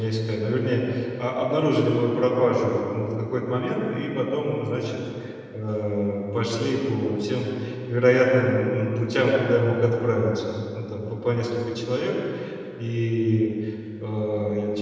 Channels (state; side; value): identical; both; correlation 1.00